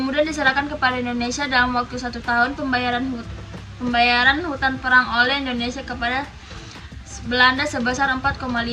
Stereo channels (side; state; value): both; identical; correlation 1.00